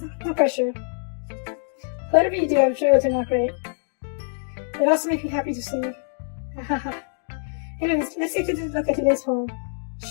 no pressure. Whatever you do, I'm sure it'll turn out great. It also makes me happy to see. Anyways, let's take a look at today's poem.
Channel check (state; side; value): silent; right; digital silence